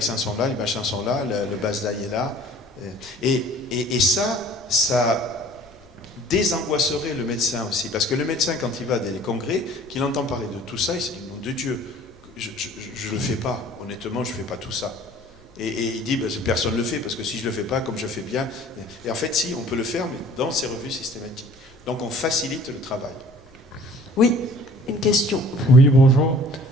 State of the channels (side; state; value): left; noise; rumble, 28 dB below the sound